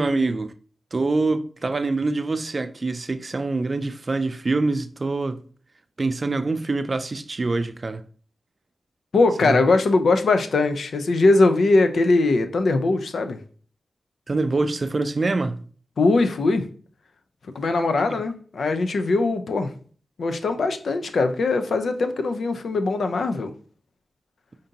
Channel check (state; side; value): normal; both; correlation 0.89